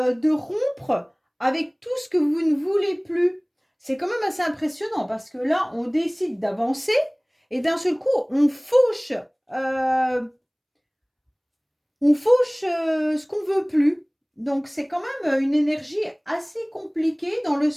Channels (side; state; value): both; identical; correlation 1.00